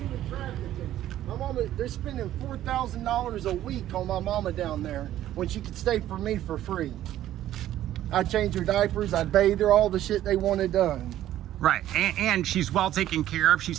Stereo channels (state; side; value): quieter; left; 12.9 dB